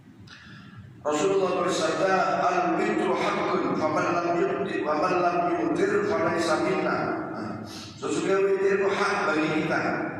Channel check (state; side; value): identical; both; correlation 1.00